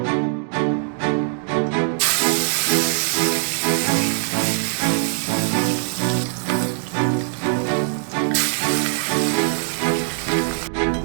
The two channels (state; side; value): silent; left; 65 dB below the other